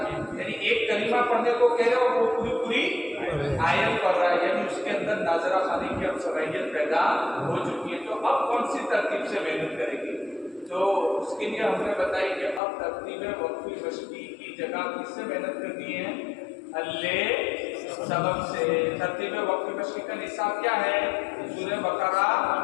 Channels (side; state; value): right; drops out; at 12.6 s